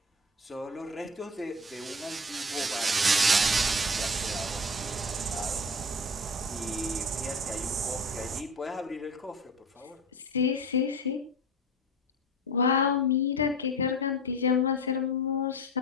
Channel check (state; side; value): normal; both; correlation 0.33